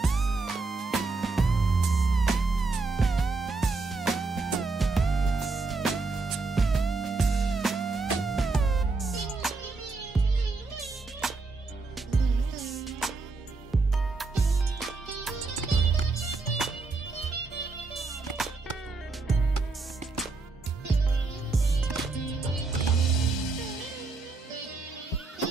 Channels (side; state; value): left; quieter; 3.8 dB